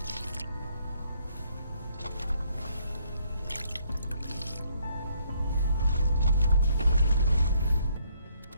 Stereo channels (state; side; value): inverted; both; correlation -0.69